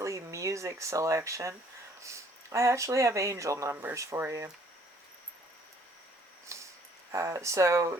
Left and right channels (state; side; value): normal; both; correlation 0.61